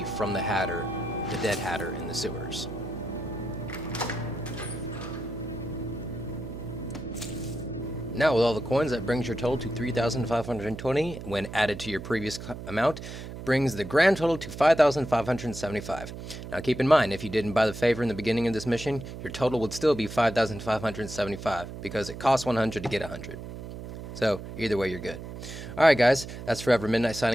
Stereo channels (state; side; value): noise; right; hum, 10 dB below the sound